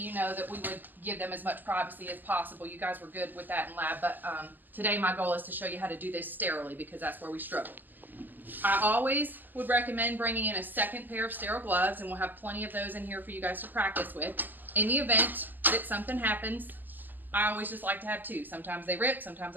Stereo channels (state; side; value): late; left; 0.087 ms